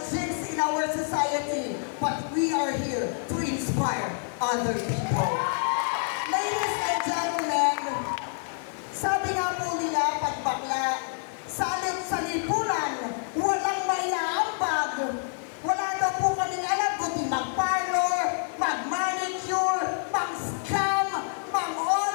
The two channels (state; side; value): silent; right; 60 dB below the other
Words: jinx in our society, but we are here to inspire other people. Ladies and gentlemen, sabi nga po nila, pag bakla, salit sa lipunan, walang maiaambag. Wala daw po kaming alam kundi mag-parlor, mag-manicure, mag-scam,